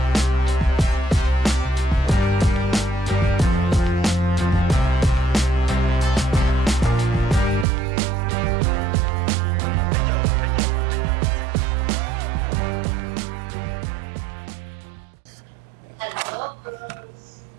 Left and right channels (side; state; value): left; drops out; at 7.7 s